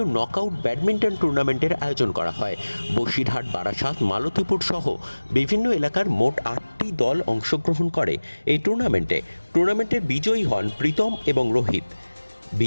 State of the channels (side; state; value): both; inverted; correlation -1.00